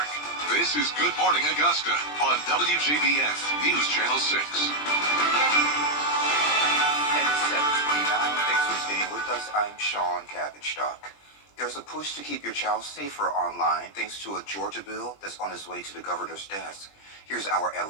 this is Good Morning Augusta on WJBF News Channel 6. And it's 7:29. Thanks for staying with us. I'm Sean Cabbage-Stock. There's a push to keep your child safer online thanks to a Georgia bill that's on its way to the governor's desk. Here's our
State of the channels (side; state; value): right; late; 20 ms